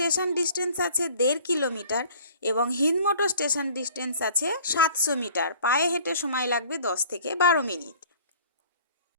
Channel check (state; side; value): inverted; both; correlation -0.51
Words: ডিস্টেন্স আছে 1.5 কিলোমিটার এবং হিন্দমোটর স্টেশন ডিস্টেন্স আছে 700 মিটার। পায়ে হেঁটে সময় লাগবে 10 থেকে 12 মিনিট।